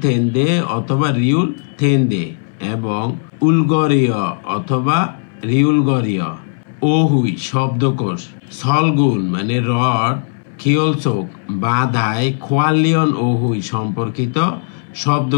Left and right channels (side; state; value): right; silent; 64 dB below the other